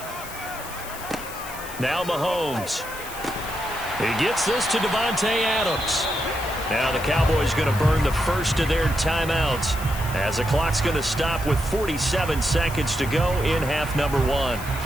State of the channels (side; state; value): left; noise; hiss, 13 dB below the sound